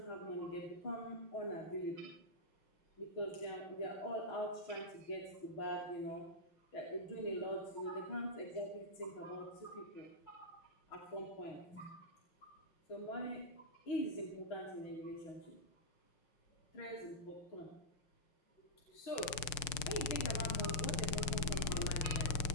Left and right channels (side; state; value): right; late; 6.6 ms